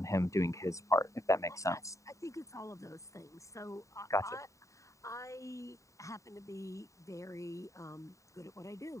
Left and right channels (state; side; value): late; right; 0.15 ms